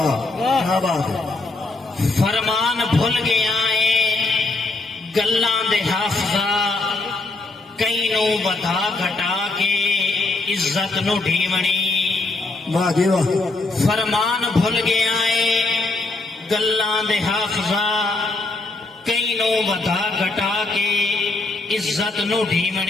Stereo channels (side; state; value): right; quieter; 3.2 dB